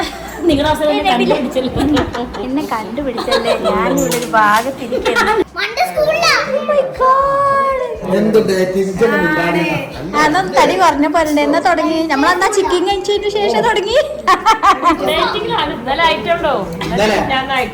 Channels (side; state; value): both; identical; correlation 1.00